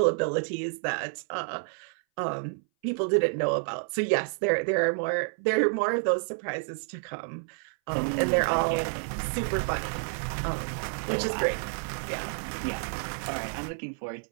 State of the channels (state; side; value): silent; left; 58 dB below the other